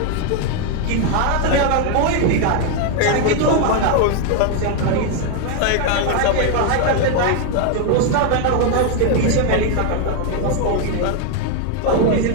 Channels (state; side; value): different; both; correlation 0.01